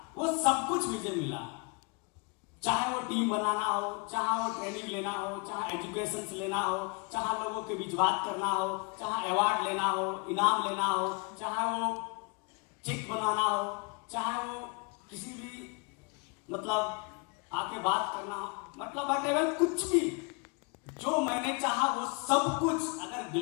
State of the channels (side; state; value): right; quieter; 32.1 dB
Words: वो सब कुछ मुझे मिला। चाहे वो टीम बनाना हो, चाहे वो ट्रेनिंग लेना हो, चाहे एजुकेशन लेना हो, चाहे लोगों के बीच बात करना हो, चाहे अवार्ड लेना हो, इनाम लेना हो, चाहे वो चेक बनाना हो, चाहे वो किसी भी मतलब आके बात करना, मतलब वटेवर कुछ भी जो मैंने चाहा वो सब कुछ अगर